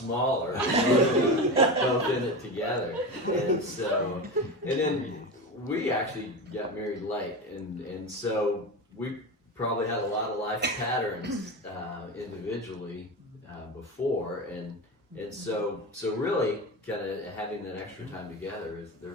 both in it together. And then we actually got married late, and so we probably had a lot of life patterns individually before, and so really kind of having that extra time together there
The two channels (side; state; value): both; normal; correlation 0.24